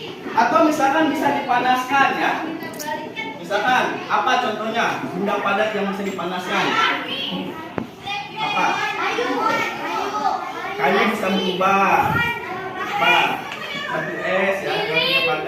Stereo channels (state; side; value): identical; both; correlation 1.00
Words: Atau misalkan bisa dipanaskan ya. Misalkan apa contohnya benda padat yang bisa dipanaskan? Apa? Kayu bisa berubah. Apa? Batu es ya, kayu